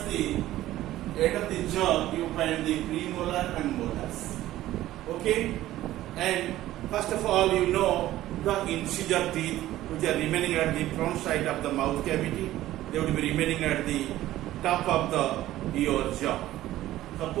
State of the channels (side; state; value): left; quieter; 14.8 dB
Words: the end of the jaw, you find the premolar and molars. Okay, and first of all, you know the incisor teeth which are remaining at the front side of the mouth cavity. They will be remaining at the top of your jaw.